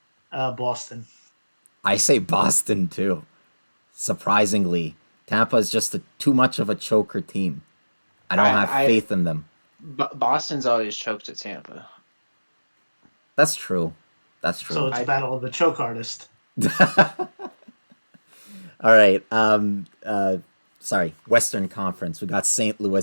Boston. I say Boston too. Surprisingly, Tampa is just too much of a choker team. I don't have faith in them. Boston's always choked at Tampa. That's true. That's true. So it's battle of the choke artist. All right. Sorry. Western Conference. We got St.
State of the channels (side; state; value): both; inverted; correlation -1.00